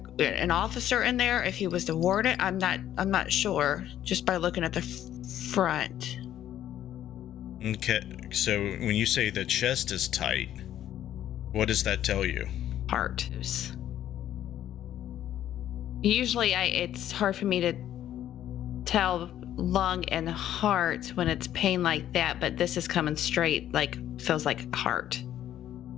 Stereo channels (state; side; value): quieter; right; 11.6 dB